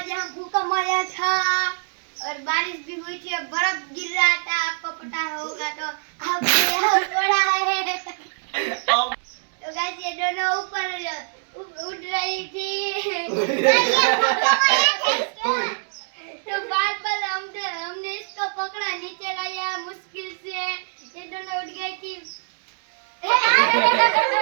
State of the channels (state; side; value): silent; left; digital silence